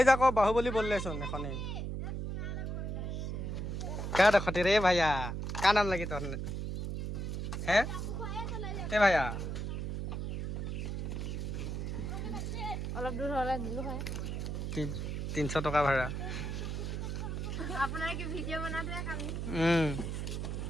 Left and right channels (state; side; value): noise; right; hum, 3 dB below the sound